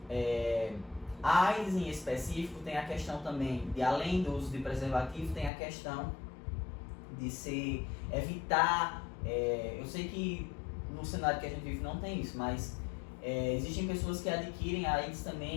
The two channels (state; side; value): drops out; right; at 5.5 s